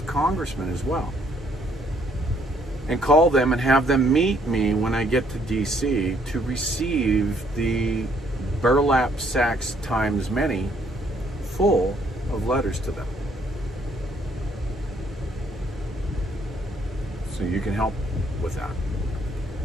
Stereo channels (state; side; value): normal; both; correlation 0.67